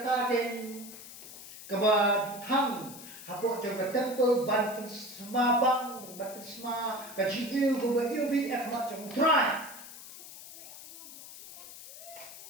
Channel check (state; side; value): noise; left; hiss, 14 dB below the sound